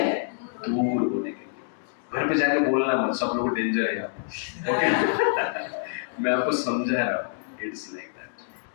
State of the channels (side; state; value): right; silent; digital silence